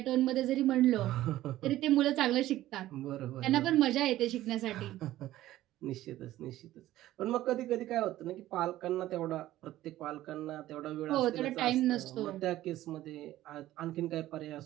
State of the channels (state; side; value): quieter; left; 14.8 dB